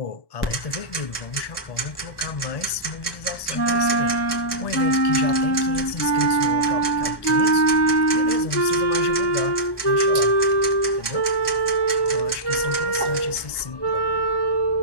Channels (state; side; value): late; right; 1.1 ms